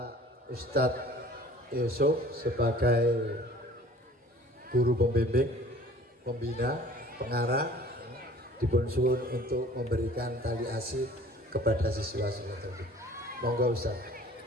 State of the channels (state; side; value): normal; both; correlation 0.49